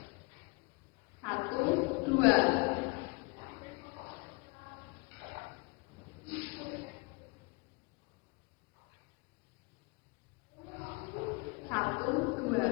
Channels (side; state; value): right; quieter; 28.0 dB